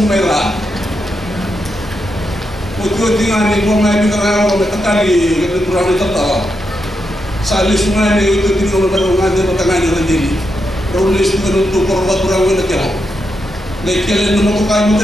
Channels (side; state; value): both; normal; correlation 0.84